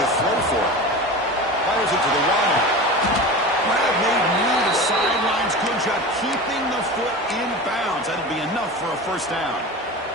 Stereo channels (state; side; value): normal; both; correlation 0.30